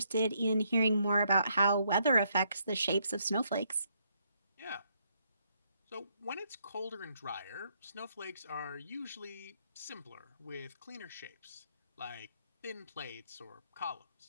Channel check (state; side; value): inverted; both; correlation -0.73